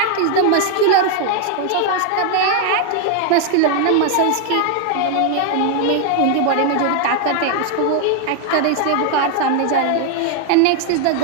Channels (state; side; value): different; both; correlation 0.00